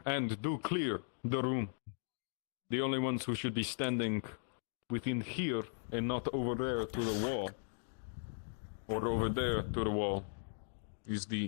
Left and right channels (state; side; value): silent; right; digital silence